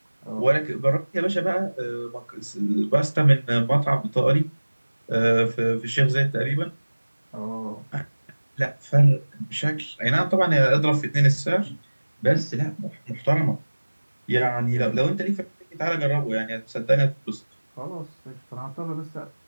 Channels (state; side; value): inverted; both; correlation -1.00